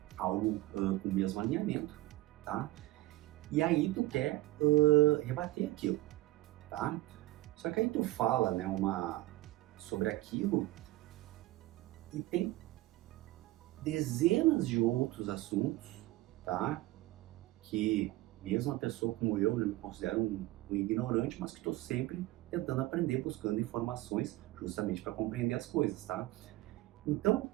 algo com o mesmo alinhamento, tá? E aí tu quer rebater aquilo, tá? Só que aí tu fala, né, sobre aquilo e tem dezenas de outros assuntos, tá? Que mesmo uma pessoa como eu, né, me considero um ignorante, mas que estou sempre tentando aprender, buscando informações justamente para compreender as coisas, tá? Então,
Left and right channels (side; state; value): left; quieter; 17.9 dB